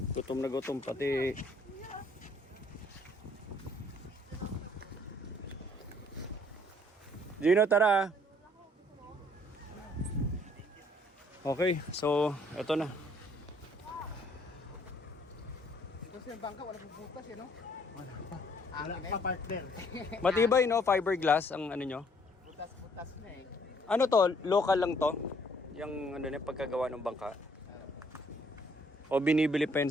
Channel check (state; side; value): normal; both; correlation 0.63